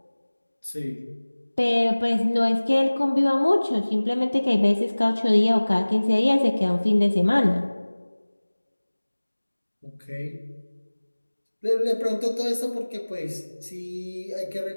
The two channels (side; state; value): both; inverted; correlation -1.00